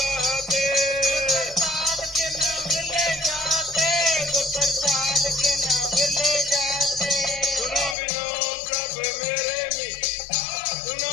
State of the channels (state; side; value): drops out; right; at 8.0 s